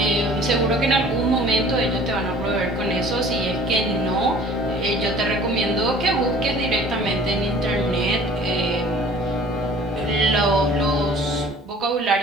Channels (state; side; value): normal; both; correlation 0.49